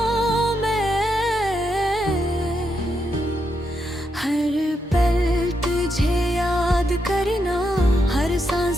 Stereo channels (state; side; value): normal; both; correlation 0.82